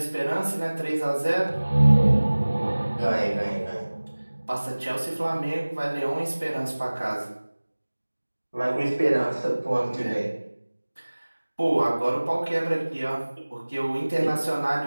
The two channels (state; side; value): inverted; both; correlation -1.00